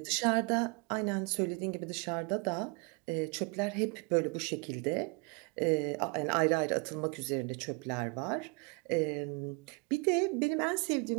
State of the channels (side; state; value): left; quieter; 32.0 dB